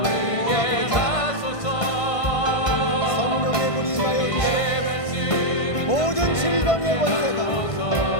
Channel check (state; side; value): late; right; 1.5 ms